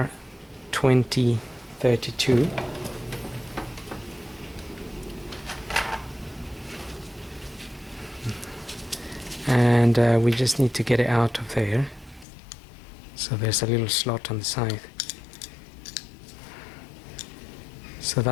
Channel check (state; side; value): drops out; right; at 12.2 s